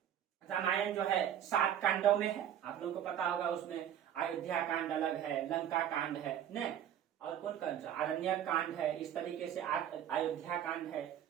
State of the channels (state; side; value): quieter; left; 10.1 dB